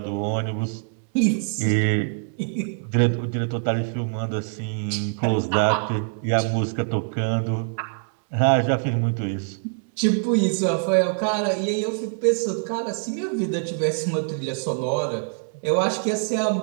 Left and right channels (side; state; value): left; silent; 62 dB below the other